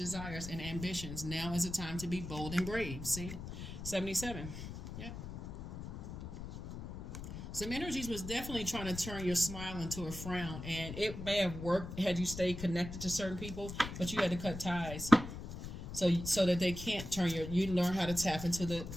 and ambitions. Now is the time to be bold and brave. See? 77. Yep. Some energies was definitely trying to turn your smile into a frown. And it may have worked had you stayed connected to certain people, but you had to cut ties. So that they can't turn you learn how to tap into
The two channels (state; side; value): noise; left; rumble, 9 dB below the sound